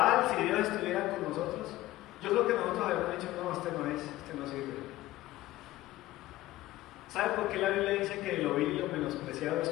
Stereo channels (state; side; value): quieter; right; 16.5 dB